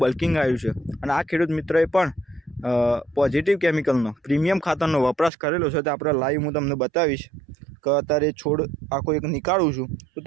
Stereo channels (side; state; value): left; drops out; at 5.3 s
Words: બલ્કિંગ આવ્યું છે અને આ ખેડૂત મિત્રોએ પણ પોઝિટિવ કેમિકલનો પ્રીમિયમ ખાતરનો વપરાશ કરેલો છે. તો આપણે લાઈવ હું તમને બતાવીશ કે અત્યારે છોડ આખો એક નીકાળું છું તો